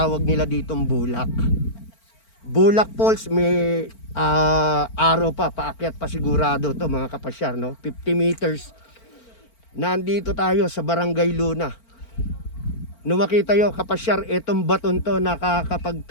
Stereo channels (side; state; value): right; late; 4.4 ms